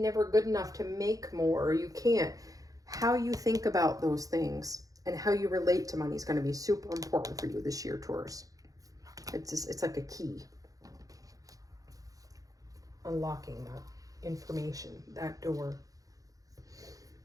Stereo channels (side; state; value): left; late; 0.17 ms